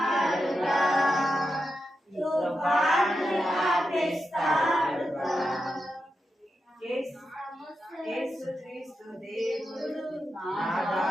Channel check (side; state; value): both; normal; correlation 0.88